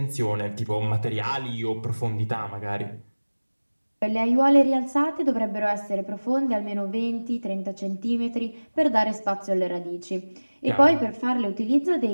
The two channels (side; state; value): both; inverted; correlation -1.00